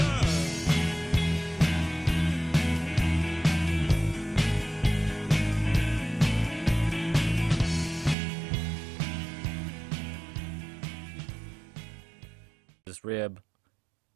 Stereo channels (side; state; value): left; drops out; at 8.2 s